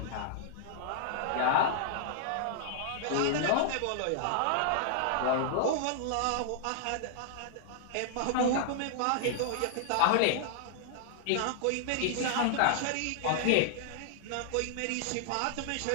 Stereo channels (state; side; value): different; both; correlation -0.01